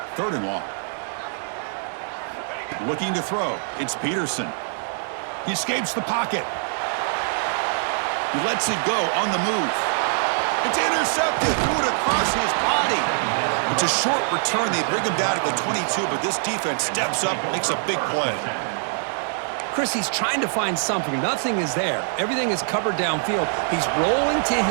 third and long. Looking to throw. It's Peterson. He escapes the pocket. He lets it go on the move. It's intercepted. Threw it across his body. It's a short return. They bring him down at the 22, but this defense steps up, makes a big play. Chris, he's trying to find something. Nothing is there. Everything is covered downfield. He's rolling to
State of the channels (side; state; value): left; silent; digital silence